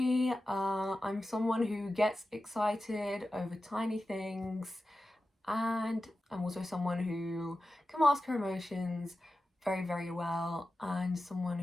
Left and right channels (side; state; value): both; normal; correlation 0.93